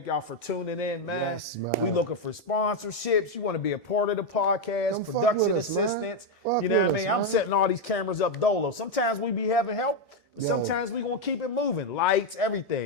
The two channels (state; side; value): normal; both; correlation 0.04